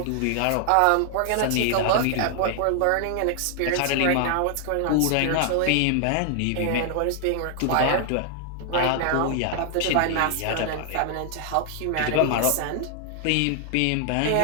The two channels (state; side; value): different; both; correlation 0.00